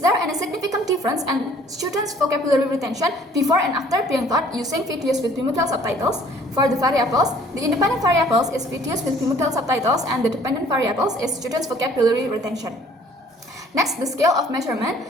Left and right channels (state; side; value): normal; both; correlation 0.56